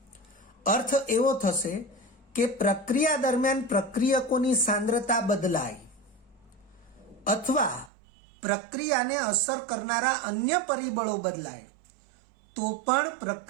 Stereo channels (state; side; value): drops out; left; at 7.9 s